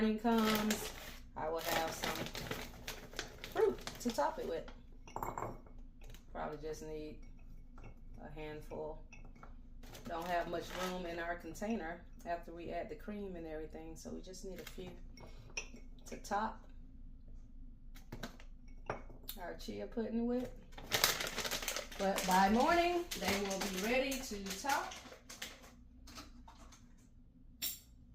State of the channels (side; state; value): both; identical; correlation 1.00